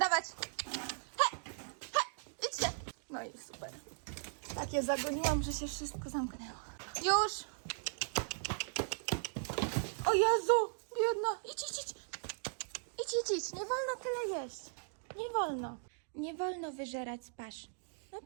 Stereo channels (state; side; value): silent; left; digital silence